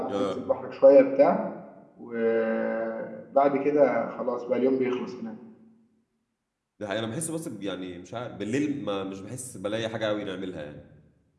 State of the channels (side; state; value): both; identical; correlation 1.00